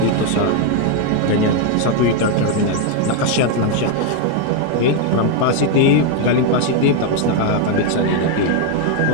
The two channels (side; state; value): both; different; correlation 0.01